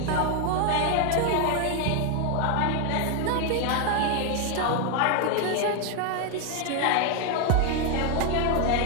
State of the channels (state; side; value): different; both; correlation 0.01